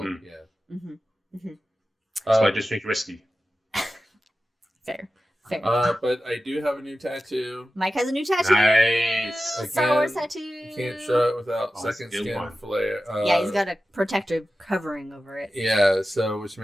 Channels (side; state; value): both; normal; correlation 0.94